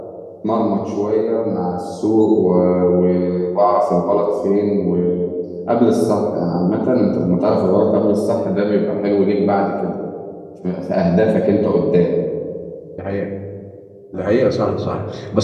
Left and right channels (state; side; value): identical; both; correlation 1.00